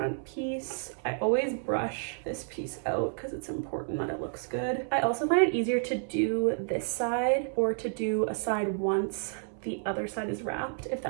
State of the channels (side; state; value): left; silent; 57 dB below the other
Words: piece. I always brush this piece out because it's important that it looks good. I also find it easier to do this side or to do a side once the other side is wrapped, if